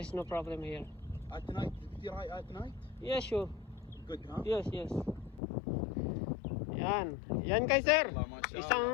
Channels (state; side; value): drops out; right; at 5.4 s